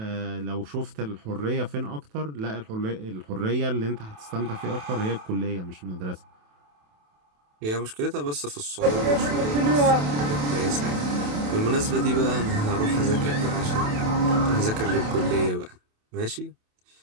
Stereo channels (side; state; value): left; late; 28 ms